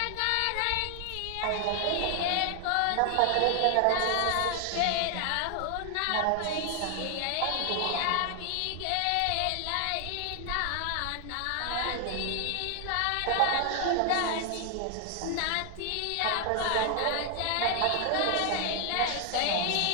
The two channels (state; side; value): different; both; correlation 0.00